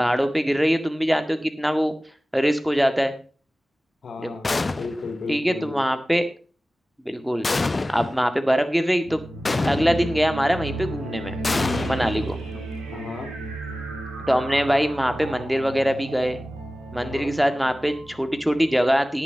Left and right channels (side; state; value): both; normal; correlation 0.96